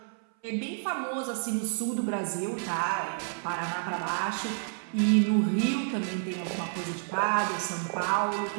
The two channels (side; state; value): left; silent; 55 dB below the other